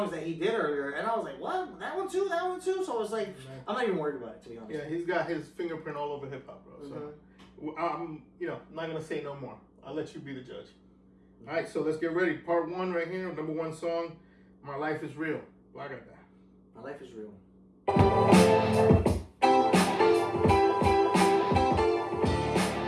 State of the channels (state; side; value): identical; both; correlation 1.00